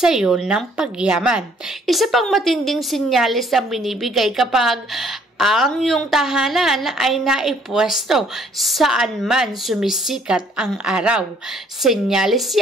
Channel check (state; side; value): normal; both; correlation 0.62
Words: iyo ng pagyaman. Isa pang matinding senyales ang binibigay kapag ang iyong tahanan ay naipwesto saan man sumisikat ang araw. Senyales